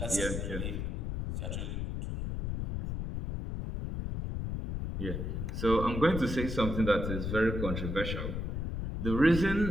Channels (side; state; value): left; noise; rumble, 3 dB below the sound